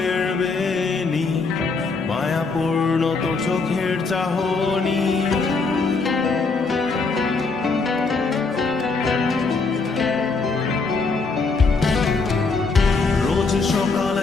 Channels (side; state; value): right; quieter; 4.2 dB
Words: বেনি, মায়াপূর্ণ তোর চোখের চাহনি। রোজ